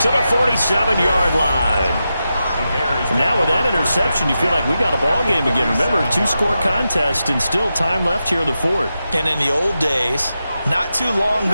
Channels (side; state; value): both; inverted; correlation -0.89